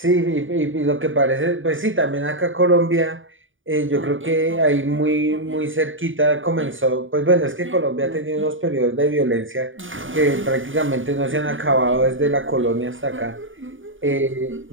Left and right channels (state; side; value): late; left; 0.57 ms